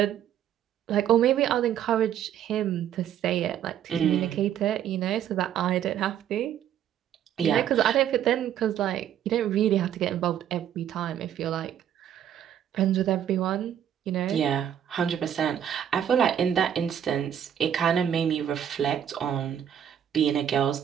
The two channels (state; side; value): quieter; left; 9.9 dB